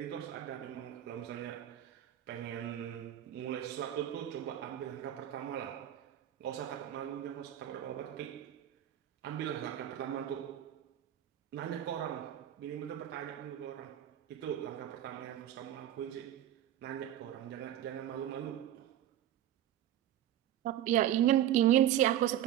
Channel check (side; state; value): left; quieter; 11.7 dB